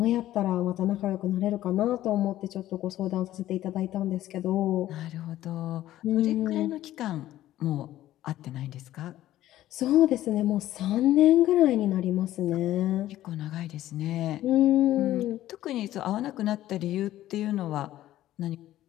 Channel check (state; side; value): quieter; right; 14.0 dB